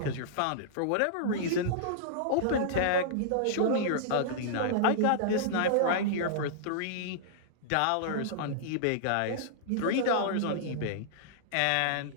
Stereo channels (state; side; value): different; both; correlation -0.02